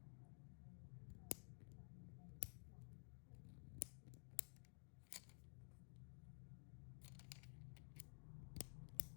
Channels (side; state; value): right; silent; digital silence